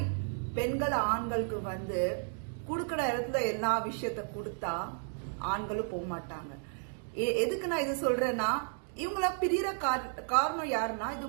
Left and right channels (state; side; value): silent; left; 56 dB below the other